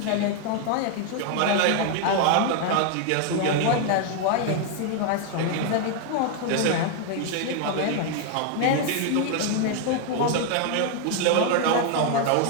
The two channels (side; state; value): both; different; correlation 0.00